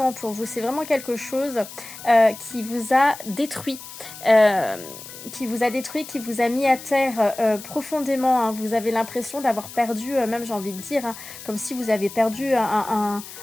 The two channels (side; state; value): left; noise; hiss, 14 dB below the sound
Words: pour vous. C'est vraiment quelque chose qui vous a détruit. Qui vous a mis à terre profondément. Vous avez l'impression d'avoir perdu, même j'ai envie de dire, comme si vous avez perdu